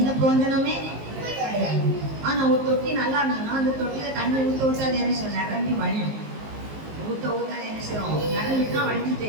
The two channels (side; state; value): left; late; 19 ms